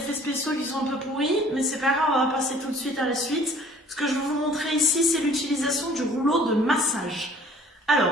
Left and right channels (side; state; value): both; normal; correlation 0.53